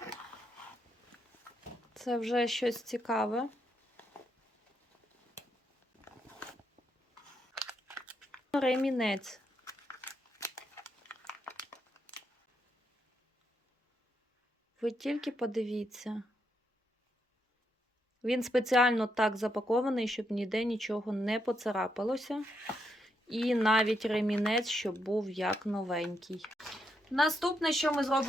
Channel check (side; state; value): both; normal; correlation 0.80